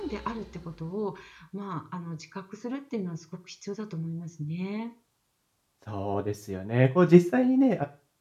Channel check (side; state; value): both; identical; correlation 1.00